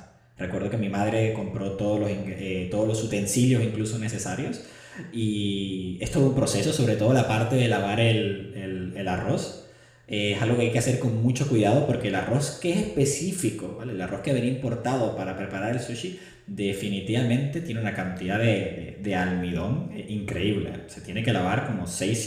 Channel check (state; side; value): identical; both; correlation 1.00